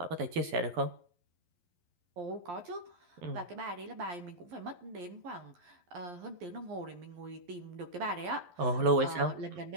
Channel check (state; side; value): late; left; 11 ms